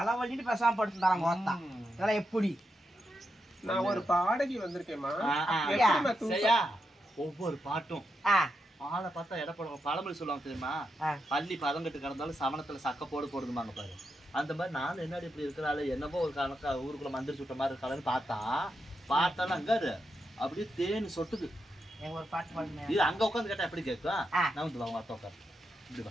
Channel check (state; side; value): normal; both; correlation 0.85